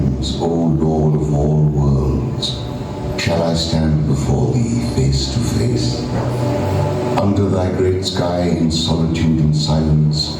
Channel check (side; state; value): both; identical; correlation 1.00